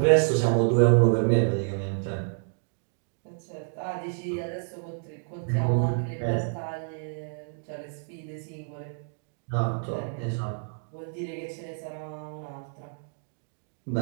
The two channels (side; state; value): left; silent; digital silence